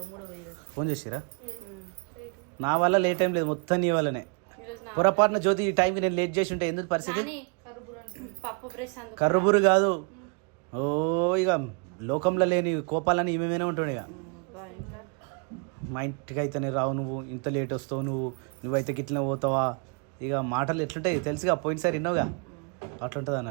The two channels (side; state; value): left; quieter; 36.0 dB